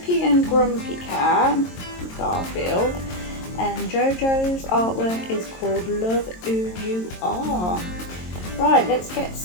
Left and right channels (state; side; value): late; right; 22 ms